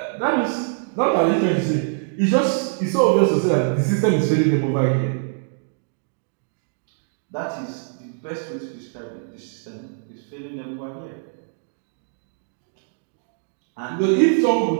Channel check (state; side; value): silent; left; digital silence